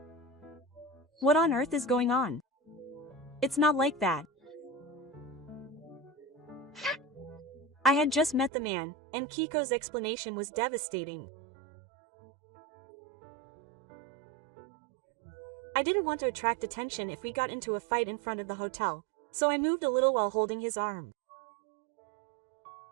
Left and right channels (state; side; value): drops out; left; at 8.5 s